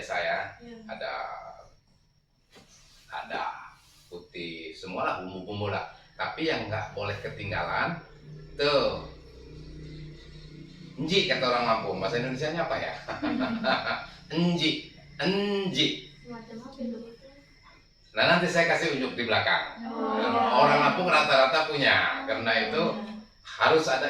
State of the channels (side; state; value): both; identical; correlation 1.00